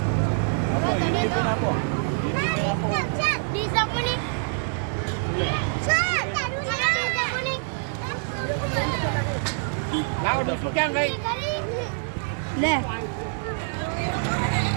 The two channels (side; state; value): left; silent; digital silence